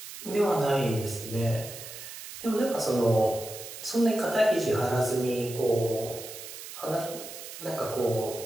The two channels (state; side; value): noise; right; hiss, 12 dB below the sound